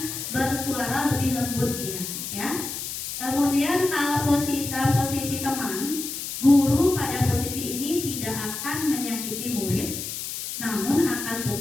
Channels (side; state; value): left; noise; hiss, 6 dB below the sound